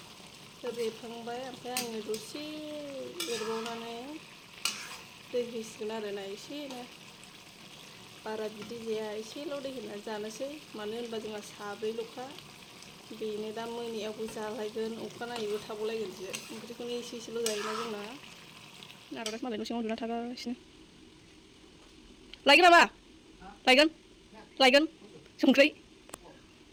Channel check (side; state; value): both; identical; correlation 1.00